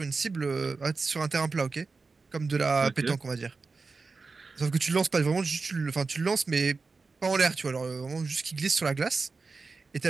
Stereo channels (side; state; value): left; quieter; 4.2 dB